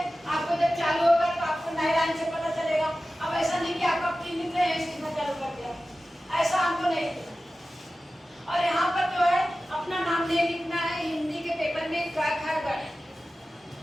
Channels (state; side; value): normal; both; correlation 0.95